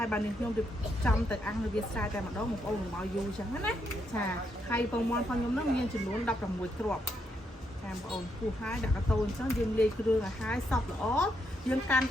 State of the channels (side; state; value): both; normal; correlation 0.78